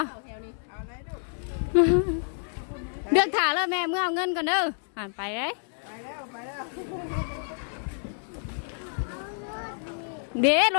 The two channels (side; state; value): right; silent; 59 dB below the other